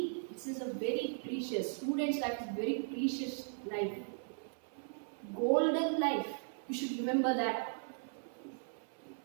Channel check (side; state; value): left; silent; 53 dB below the other